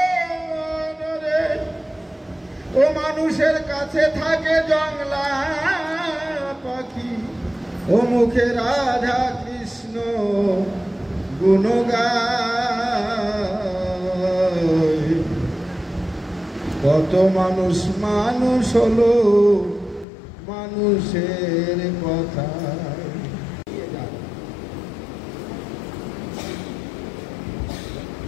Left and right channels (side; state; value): right; drops out; at 20.1 s